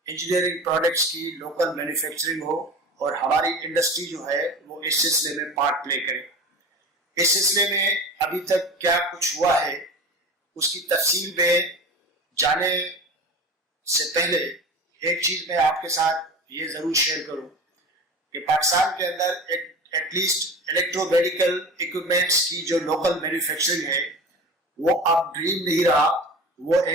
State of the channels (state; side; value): normal; both; correlation 0.33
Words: इंजीनियरिंग प्रोडक्ट्स की लोकल मैन्युफैक्चरिंग हो और हमारी इंडस्ट्री जो है वो इस सिलसिले में पार्ट प्ले करे। इस सिलसिले में अभी तक क्या कुछ हुआ है उसकी तफसील में जाने से पहले एक चीज मैं आपके साथ ये जरूर शेयर करूं कि पाकिस्तान के अंदर एटलीस्ट इलेक्ट्रोमेडिकल इक्विपमेंट्स की जो लोकल मैन्युफैक्चरिंग है वो अब ड्रीम नहीं रहा, वो